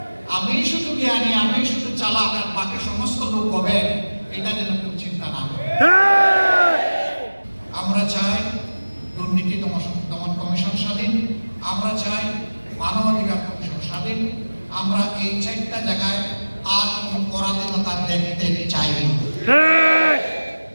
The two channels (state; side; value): inverted; both; correlation -1.00